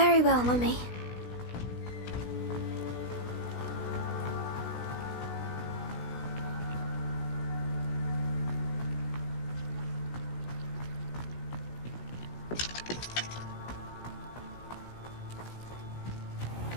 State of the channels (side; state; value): right; late; 16 ms